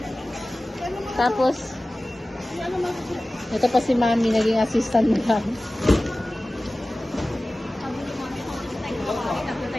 Tapos, ito pa si Mami, naging assistant mo lang.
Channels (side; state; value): both; normal; correlation 0.97